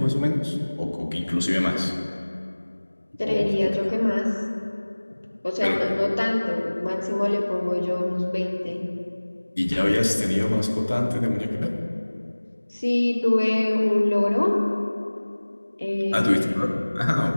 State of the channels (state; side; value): inverted; both; correlation -1.00